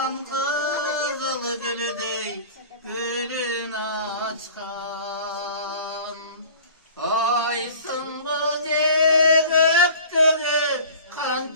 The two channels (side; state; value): both; inverted; correlation -0.43